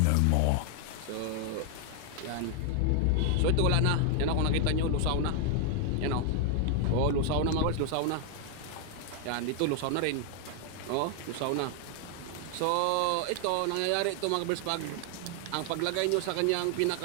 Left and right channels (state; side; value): different; both; correlation 0.00